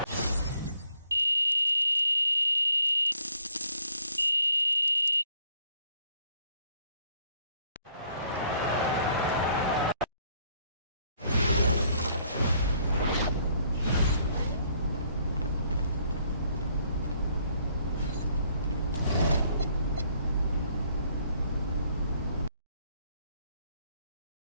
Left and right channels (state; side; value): inverted; both; correlation -0.66